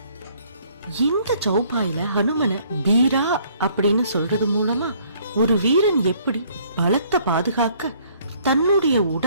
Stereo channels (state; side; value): inverted; both; correlation -0.62